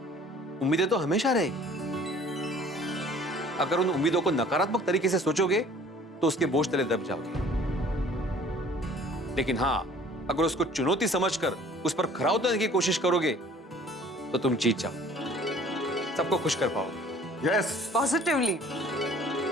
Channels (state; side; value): normal; both; correlation 0.52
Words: उम्मीदें तो हमेशा रहेगी। अगर उन उम्मीदों को नकारात्मक तरीके से सोचोगे तो उसके बोझ तले दब जाओगे। लेकिन हाँ, अगर उसको चुनौती समझकर उस पर खरा उतरने की कोशिश करोगे तो तुम जीत जाओ, सबको खुश कर पाओगे। Yes, positively.